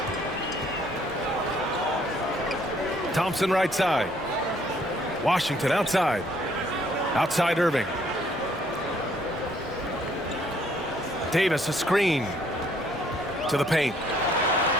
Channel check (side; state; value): both; normal; correlation 0.64